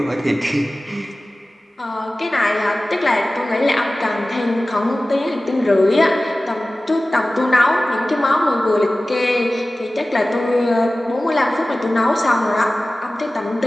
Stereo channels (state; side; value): normal; both; correlation 0.97